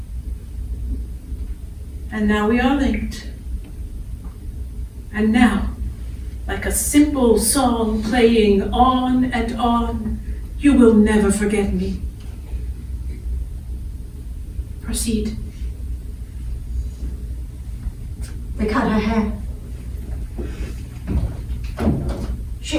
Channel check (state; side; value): identical; both; correlation 1.00